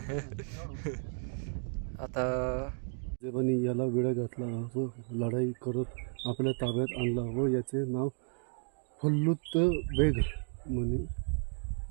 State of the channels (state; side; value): silent; left; 56 dB below the other